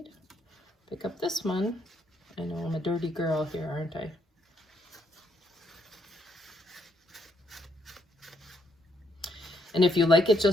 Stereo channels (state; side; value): normal; both; correlation 0.74